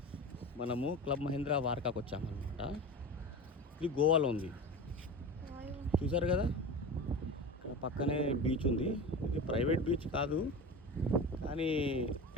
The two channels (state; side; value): normal; both; correlation 0.29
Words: మనము క్లబ్ మహీంద్రా వార్కాకు వచ్చామన్నమాట. ఇది గోవాలో ఉంది, చూసారు కదా. ఇక్కడ పక్కనే బీచ్ ఉంది. ఇది ప్రైవేట్ బీచ్ కాదు, కానీ